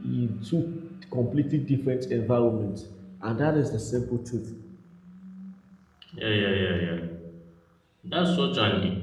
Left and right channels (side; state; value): both; identical; correlation 1.00